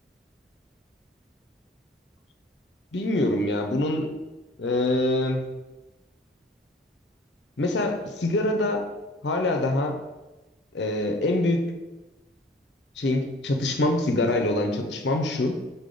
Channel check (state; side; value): normal; both; correlation 0.49